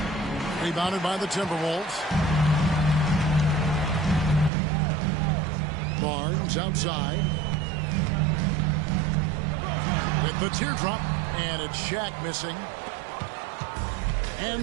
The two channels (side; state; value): left; drops out; at 4.5 s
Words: Rebounded by the Timberwolves. Barnes outside. With the teardrop, and it's Shaq missing.